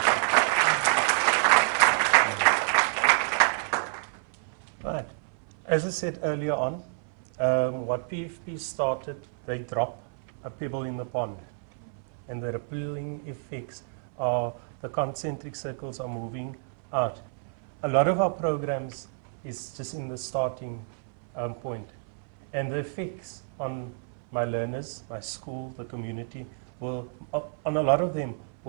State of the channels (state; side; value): silent; left; 57 dB below the other